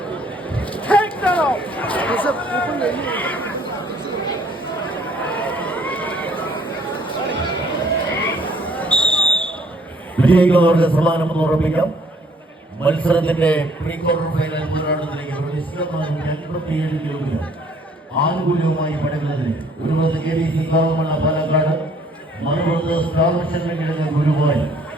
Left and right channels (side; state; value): both; normal; correlation 0.61